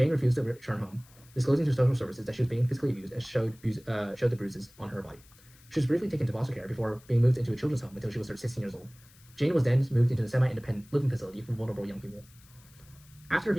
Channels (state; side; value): noise; left; hiss, 26 dB below the sound